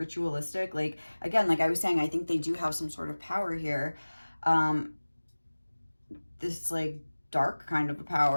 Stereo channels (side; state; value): both; inverted; correlation -1.00